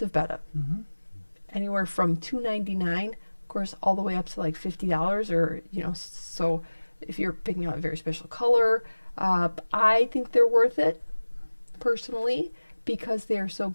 Betta. Anywhere from $2.99, of course, all the way up to like $50, or so if you're picking out a very special color, I think they're worth it personally because they're so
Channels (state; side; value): inverted; both; correlation -1.00